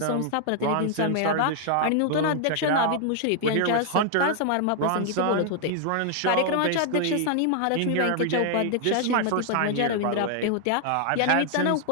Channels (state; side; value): different; both; correlation 0.00